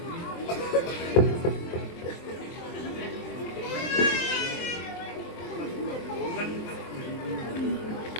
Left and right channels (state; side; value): late; right; 23 ms